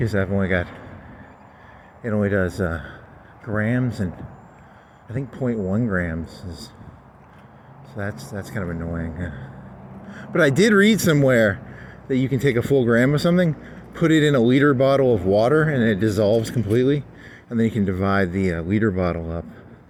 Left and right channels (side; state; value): both; identical; correlation 1.00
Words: I've only got, it only does grams, and I think 0.1 grams is, so that's kind of annoying. But I did read somewhere that you can take a full gram of something, put it in a liter bottle of water, and it dissolves completely. And then you can divide the liter bottle up